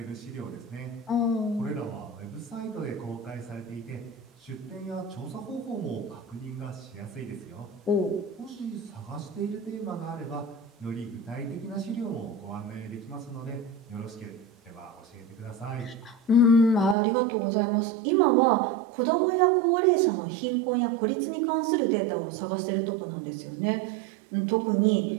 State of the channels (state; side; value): drops out; left; at 16.9 s